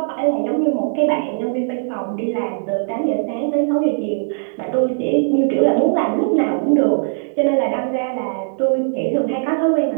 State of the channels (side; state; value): left; silent; digital silence